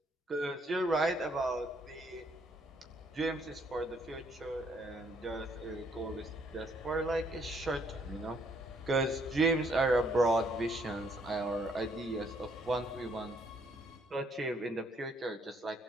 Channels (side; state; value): both; normal; correlation 0.68